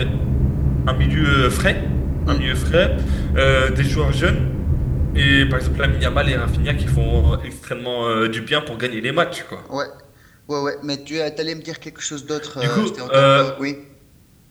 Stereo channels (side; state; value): both; identical; correlation 1.00